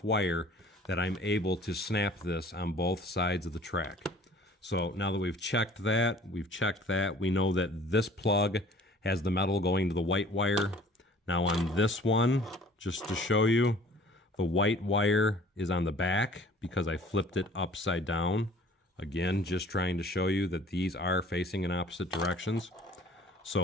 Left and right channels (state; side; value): normal; both; correlation 0.51